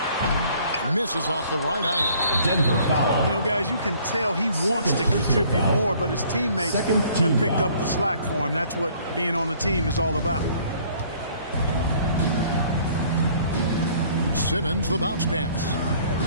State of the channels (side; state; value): both; inverted; correlation -0.57